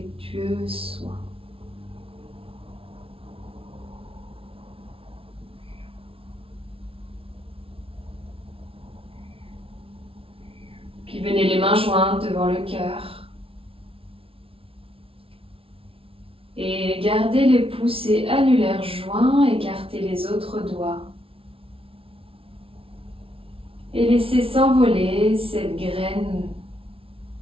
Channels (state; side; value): late; left; 0.26 ms